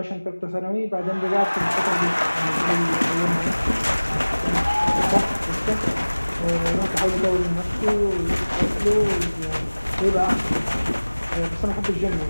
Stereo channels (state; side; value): inverted; both; correlation -1.00